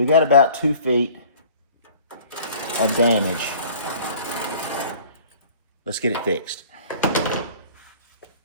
got about 2 feet of damage. let's get it fixed.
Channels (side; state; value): both; inverted; correlation -0.49